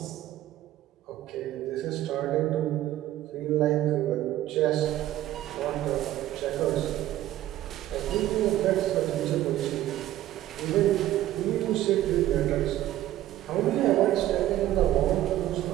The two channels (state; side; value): quieter; left; 13.8 dB